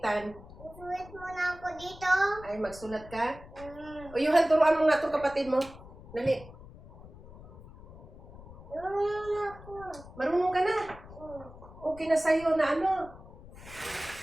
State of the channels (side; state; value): left; noise; rumble, 18 dB below the sound